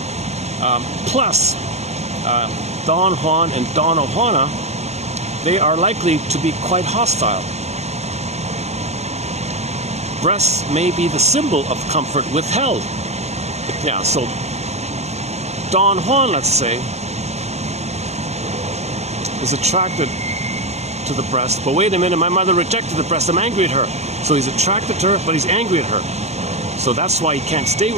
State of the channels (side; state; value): left; late; 0.32 ms